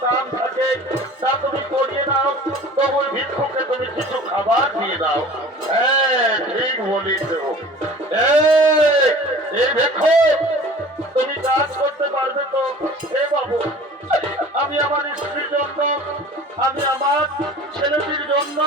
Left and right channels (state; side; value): normal; both; correlation 0.44